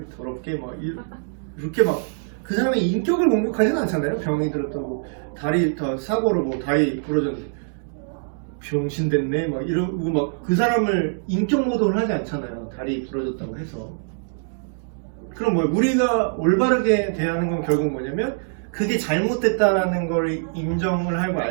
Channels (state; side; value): silent; left; 63 dB below the other